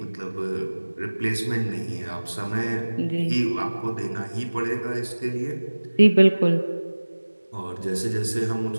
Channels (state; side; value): inverted; both; correlation -1.00